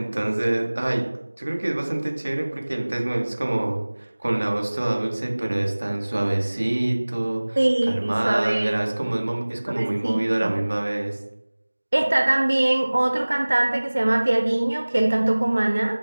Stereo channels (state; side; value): inverted; both; correlation -1.00